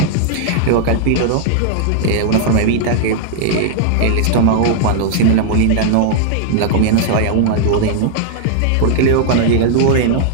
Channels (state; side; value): different; both; correlation -0.01